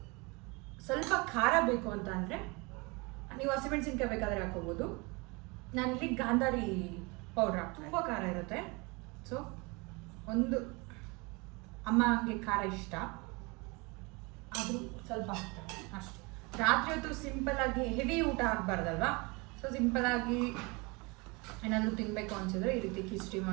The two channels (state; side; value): quieter; left; 27.5 dB